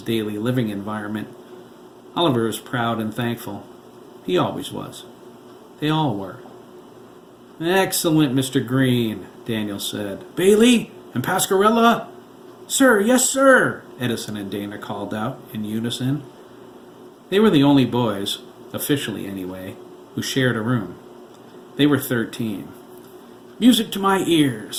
daily living environment. Oliver was proud and thankful. He always was. They all were. "Excellent, Mr. Green," Daniel said. "Bailey and Pascarella?" "Sir, yes, sir," Edison and Dana called out in unison. They were the only boys, officially anyway, who shared a room. They were 13. "Music to my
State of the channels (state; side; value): identical; both; correlation 1.00